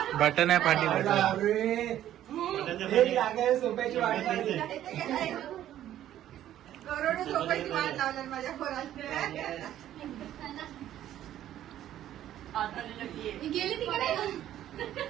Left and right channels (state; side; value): quieter; left; 12.1 dB